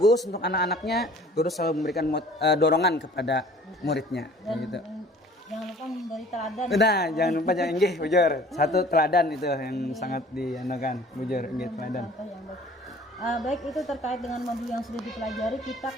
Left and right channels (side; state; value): both; normal; correlation 0.50